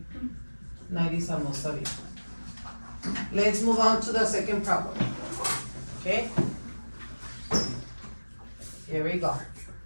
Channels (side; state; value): both; inverted; correlation -1.00